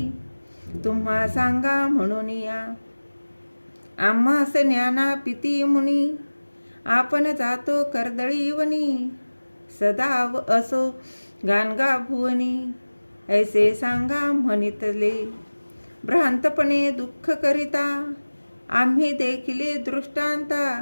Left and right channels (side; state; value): both; inverted; correlation -1.00